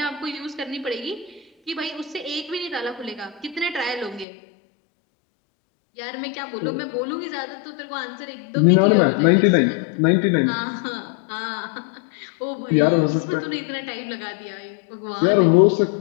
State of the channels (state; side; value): drops out; right; at 4.2 s